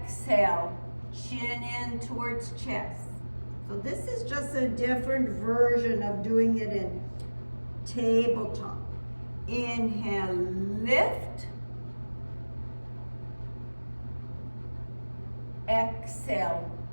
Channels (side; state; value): both; inverted; correlation -1.00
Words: chin in towards chest. So this is just a different version of doing it in tabletop. Inhale, lift. Exhale,